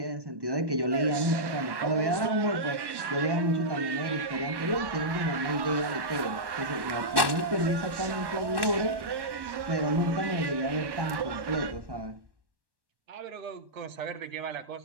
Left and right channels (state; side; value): late; left; 1.1 ms